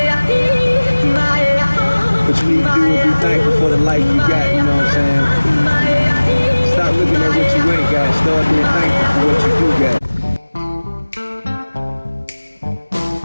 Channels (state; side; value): inverted; both; correlation -1.00